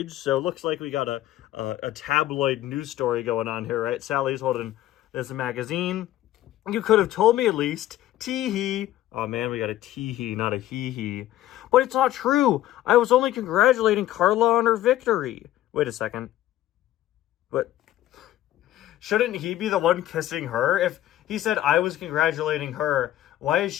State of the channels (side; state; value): right; quieter; 13.9 dB